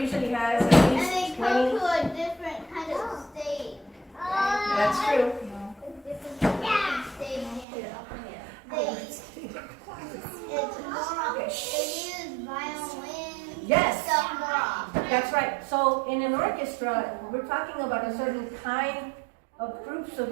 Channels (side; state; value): left; drops out; at 7.7 s